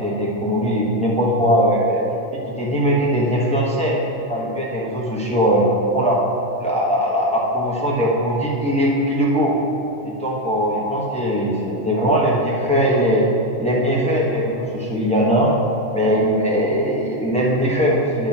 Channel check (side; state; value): both; normal; correlation 0.10